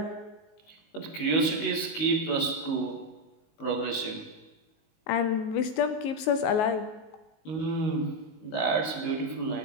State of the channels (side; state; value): right; late; 19 ms